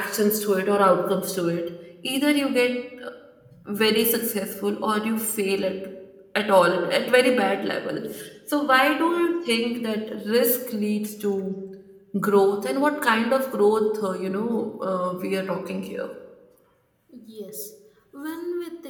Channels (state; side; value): identical; both; correlation 1.00